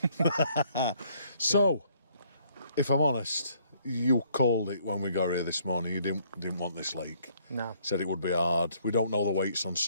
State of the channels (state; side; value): inverted; both; correlation -0.65